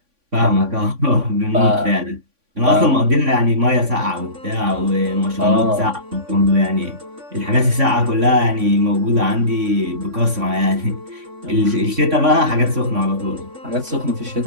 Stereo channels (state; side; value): late; left; 3.5 ms